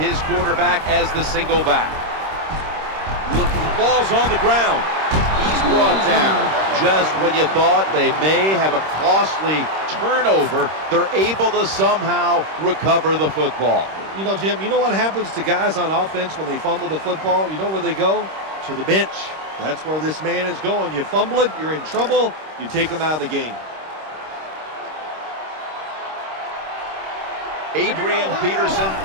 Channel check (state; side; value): late; left; 26 ms